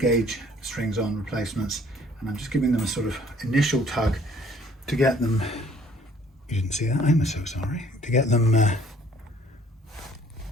strings on replacements, and I'm just giving them a sort of initial tug to get them, you didn't see that, I'm so sorry, to get them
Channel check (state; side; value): normal; both; correlation 0.58